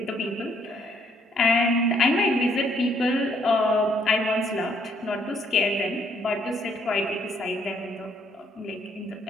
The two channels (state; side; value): normal; both; correlation 0.68